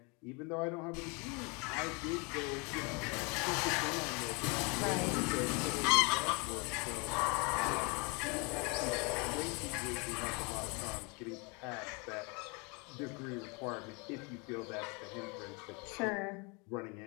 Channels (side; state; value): right; quieter; 30.8 dB